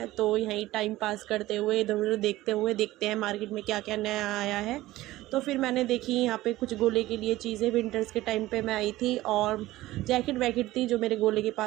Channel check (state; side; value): quieter; left; 16.8 dB